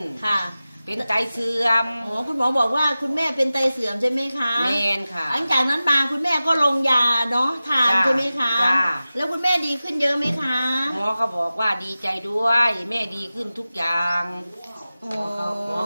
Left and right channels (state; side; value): inverted; both; correlation -0.96